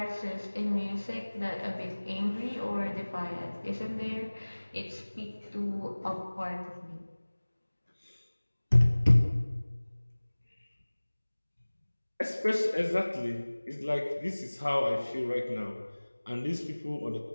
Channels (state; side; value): inverted; both; correlation -1.00